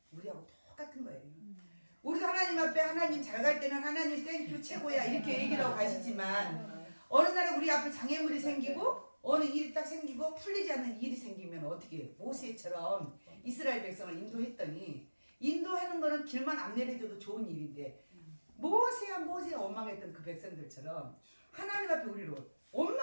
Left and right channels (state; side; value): inverted; both; correlation -1.00